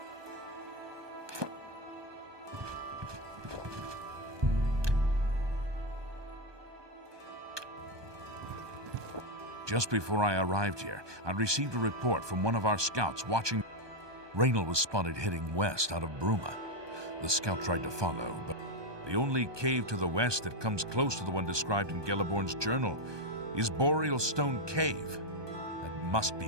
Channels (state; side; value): late; left; 1.2 ms